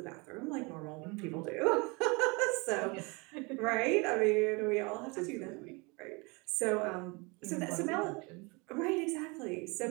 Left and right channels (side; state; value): left; quieter; 28.2 dB